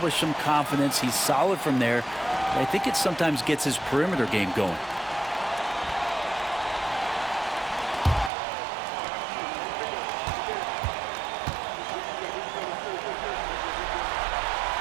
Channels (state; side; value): drops out; left; at 8.3 s